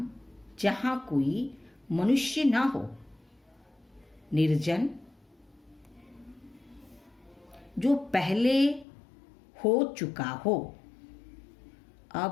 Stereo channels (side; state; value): right; drops out; at 8.8 s